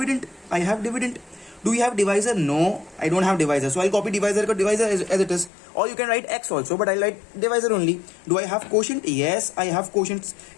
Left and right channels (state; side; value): drops out; right; at 5.5 s